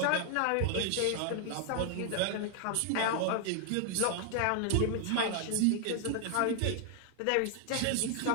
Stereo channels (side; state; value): both; different; correlation 0.00